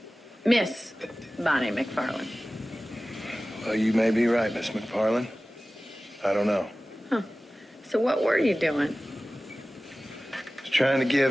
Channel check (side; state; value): both; normal; correlation 0.97